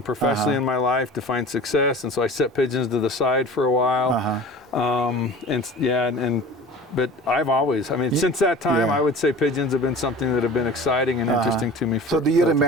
professionally in my life to find success, and so I set pigeons to the side for a while. But I've always, I mean, since that time, I would say pigeons have been something that have been exciting and interesting to me. So do you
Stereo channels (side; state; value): both; normal; correlation 0.39